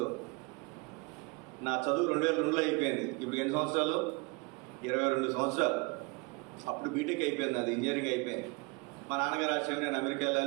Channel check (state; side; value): quieter; left; 28.7 dB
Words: నా చదువు 2002లో అయిపోయింది. ఇప్పుడు ఎన్ని సంవత్సరాలు? 22 సంవత్సరాలు. అప్పుడు బీటెక్ అయిపోయింది, అది ఇంజనీరింగ్ అయిపోయింది. మా నాన్నగారు ఆశయం నేను అమెరికా